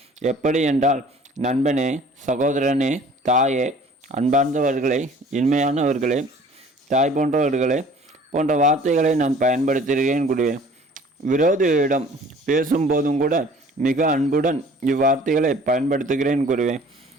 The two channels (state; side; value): normal; both; correlation 0.50